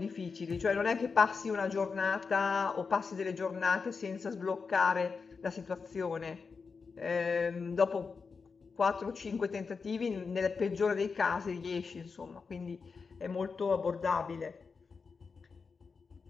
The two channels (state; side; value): quieter; right; 5.0 dB